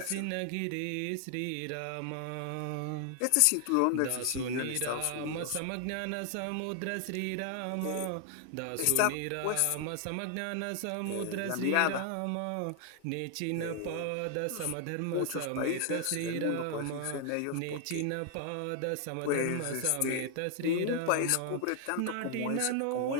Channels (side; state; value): both; different; correlation 0.00